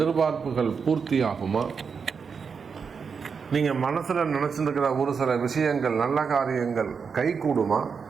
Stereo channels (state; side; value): quieter; left; 5.9 dB